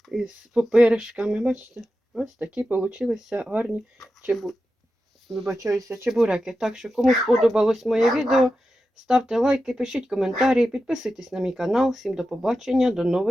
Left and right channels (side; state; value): both; normal; correlation 0.91